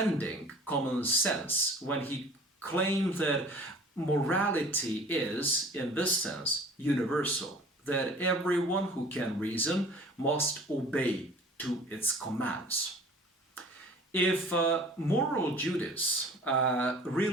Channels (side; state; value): both; normal; correlation 0.46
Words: common sense when he claimed that morality is, in this sense, universal, that everyone who can reason must obey to its commands. If moral duties